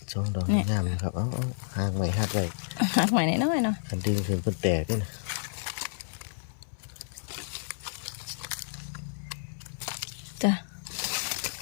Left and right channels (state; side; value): silent; right; 57 dB below the other